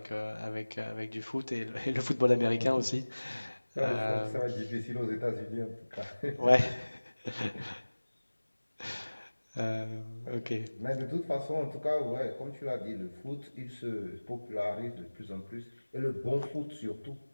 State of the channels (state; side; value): inverted; both; correlation -1.00